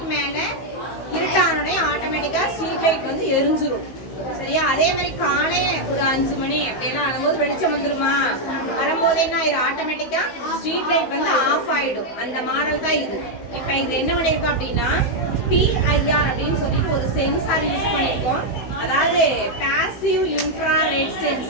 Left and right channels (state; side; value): late; right; 15 ms